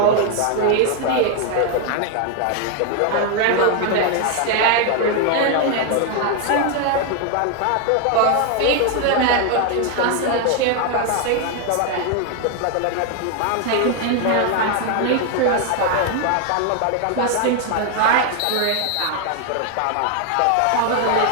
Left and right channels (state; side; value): different; both; correlation 0.01